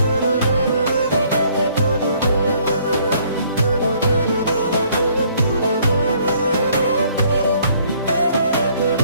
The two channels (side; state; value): both; inverted; correlation -0.63